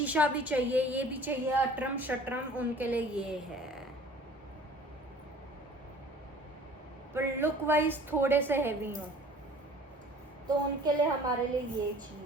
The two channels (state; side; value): normal; both; correlation 0.48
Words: भी चाहिए, ये भी चाहिए, अटरम शटरम, उनके लिए ये है। पर लुक वाइज थोड़े से हैवी हो, तो उनके लिए हमारे लिए ये